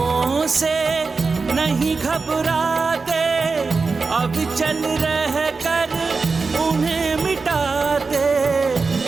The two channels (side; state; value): left; quieter; 4.4 dB